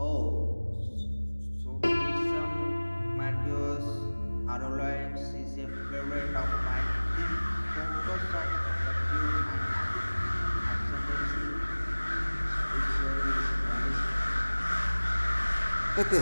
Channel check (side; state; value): both; inverted; correlation -1.00